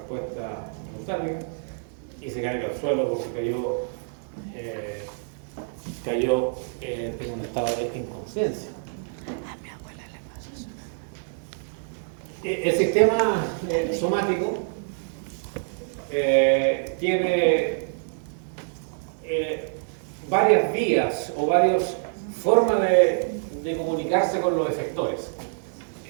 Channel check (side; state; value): left; silent; digital silence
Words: espontánea y se caiga al suelo porque cayó en un estado de inconsciencia. A mi abuela le pasa eso. El sistema somático tiene varias vías o varias formas de comunicarse con los efectores.